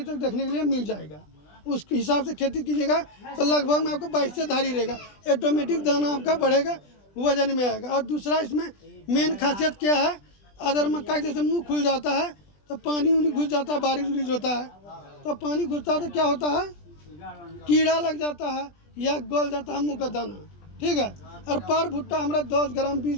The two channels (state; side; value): late; right; 20 ms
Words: तक देखने के लिए मिल जाएगा। उस हिसाब से खेती कीजिएगा तो लगभग में आपको 22 से धारी रहेगा, ऑटोमेटिक दाना आपका बढ़ेगा, वजन में आएगा। और दूसरा इसमें मेन खासियत क्या है, अदर मक्का जैसे मुंह खुल जाता है तो पानी उनी घुस जाता है, बारिश उरिश होता है तो पानी घुसता है तो क्या होता है, कीड़ा लग जाता है या गल जाता है मुँह का दाना, ठीक है। और पर भुट्टा हमारा 10 ग्राम